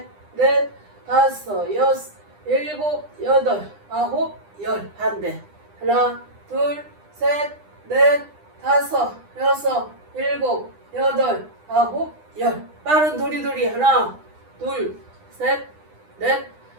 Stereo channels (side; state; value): left; late; 9.9 ms